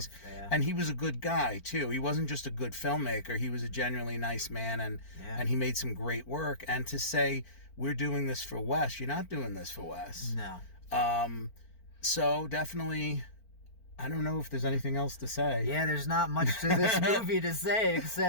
And he was a good guy, too. He wasn't just a good filmmaker. He was a genuinely nice man, and he made some great work. And to say, we're doing this for Wes, you're not doing this for Wes. No. So definitely, I don't know if there's anything else to say. Yeah, there's not much to this movie to say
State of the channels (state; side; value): late; right; 4.4 ms